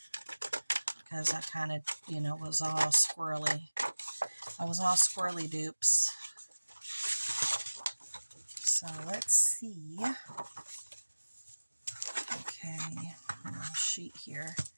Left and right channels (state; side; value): inverted; both; correlation -1.00